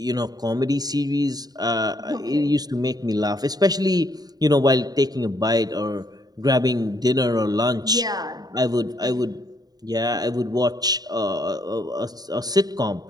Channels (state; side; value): late; left; 0.19 ms